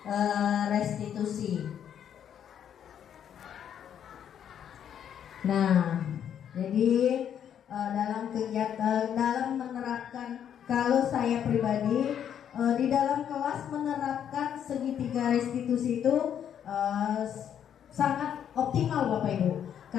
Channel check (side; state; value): right; quieter; 9.2 dB